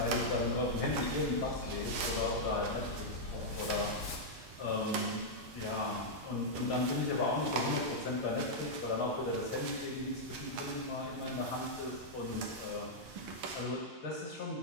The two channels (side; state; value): both; normal; correlation -0.05